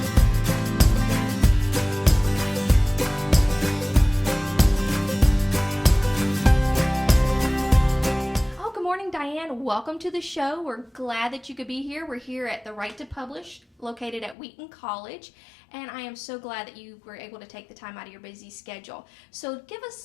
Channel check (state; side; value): drops out; right; at 14.4 s